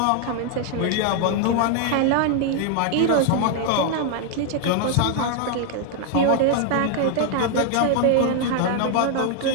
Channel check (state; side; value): different; both; correlation 0.00